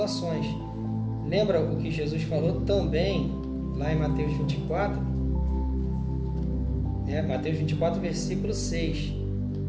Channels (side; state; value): both; identical; correlation 1.00